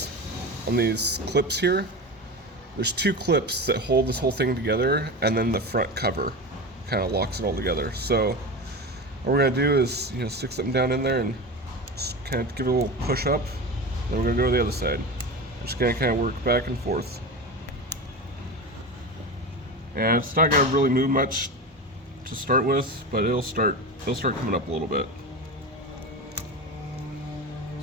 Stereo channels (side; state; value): both; normal; correlation 0.26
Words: on these clips here. There's two clips that hold this whole thing together, and then the front cover kind of locks it all together. So what we're going to do is stick something down in there and just kind of give it a little push up. Then we're going to go to the other side. We're just going to kind of work back and forth. And it's not going to really move much to start with, but it'll start coming up a little bit.